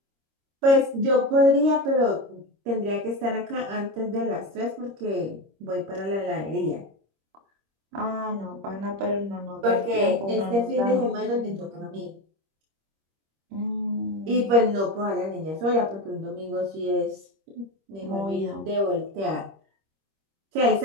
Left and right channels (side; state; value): left; late; 26 ms